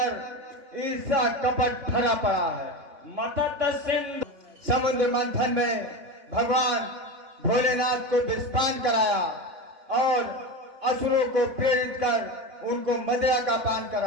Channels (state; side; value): late; left; 3.6 ms